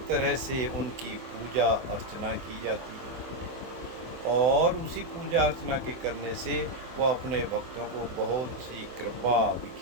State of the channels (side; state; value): left; late; 24 ms